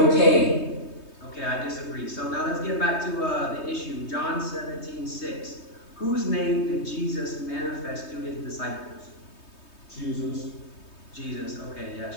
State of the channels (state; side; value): late; right; 3.2 ms